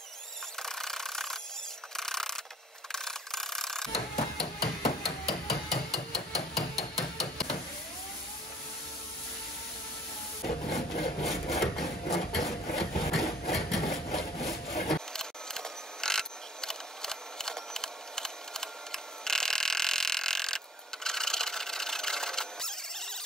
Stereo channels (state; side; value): normal; both; correlation 0.53